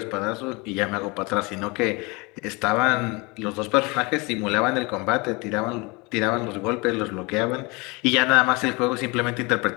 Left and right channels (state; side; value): quieter; right; 27.0 dB